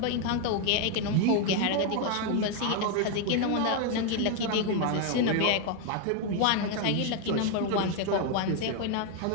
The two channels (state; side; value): different; both; correlation 0.01